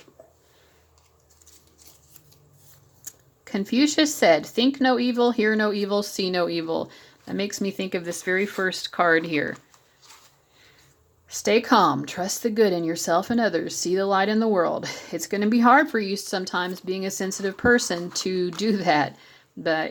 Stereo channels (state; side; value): identical; both; correlation 1.00